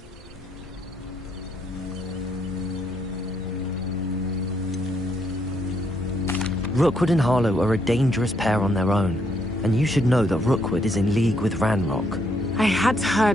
Rookwood and Harlow are a dangerous pair on their own, and you should know that Rookwood is in league with Ranrock. I had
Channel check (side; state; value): both; normal; correlation 0.73